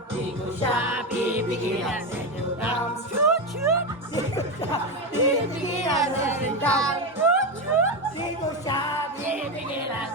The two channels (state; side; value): normal; both; correlation 0.13